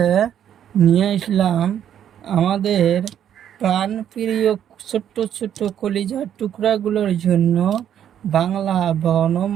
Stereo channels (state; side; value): quieter; left; 9.8 dB